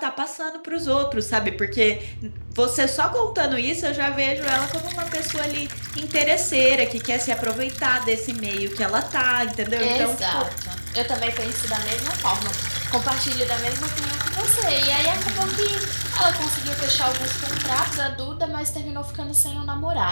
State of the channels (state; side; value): inverted; both; correlation -1.00